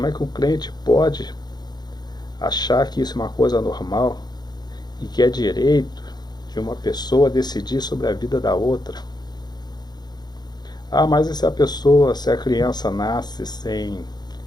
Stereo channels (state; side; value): late; right; 0.20 ms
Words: é que o crente pode achar que isso é uma coisa normal e que é direito de uma pessoa decidir sobre a vida da outra? Ah, mas e se a criança nasce sem